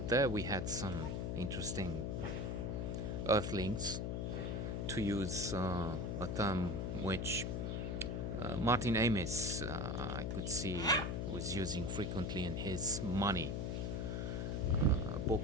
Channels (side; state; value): left; noise; hum, 1 dB below the sound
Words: there we had some interesting earthlings, to use a term which Martin Amis, I could see, was using frequently in his Money